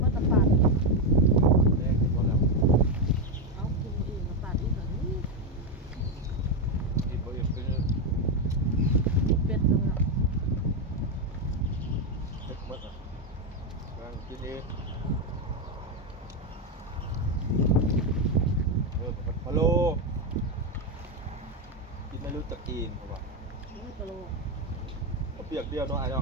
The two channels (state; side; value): normal; both; correlation 0.07